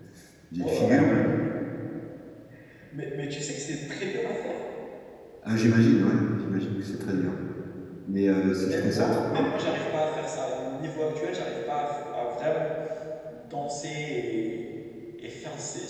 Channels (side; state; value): both; identical; correlation 1.00